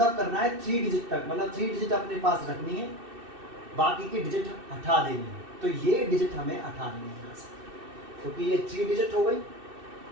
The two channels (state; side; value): late; left; 2.6 ms